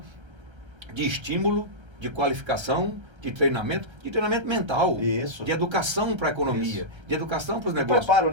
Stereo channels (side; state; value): left; late; 1.3 ms